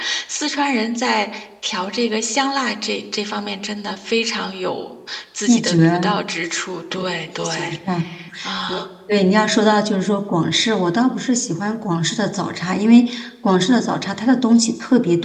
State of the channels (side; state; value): both; identical; correlation 1.00